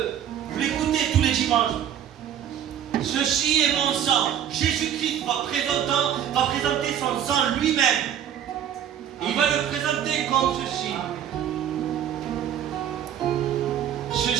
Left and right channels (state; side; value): quieter; left; 9.8 dB